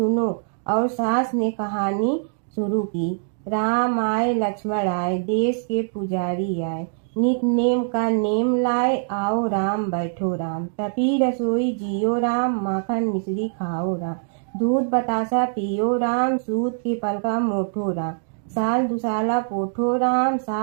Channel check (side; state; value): left; silent; digital silence